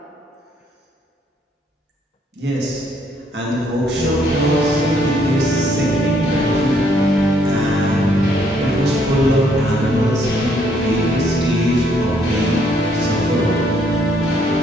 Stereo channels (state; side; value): normal; both; correlation 0.69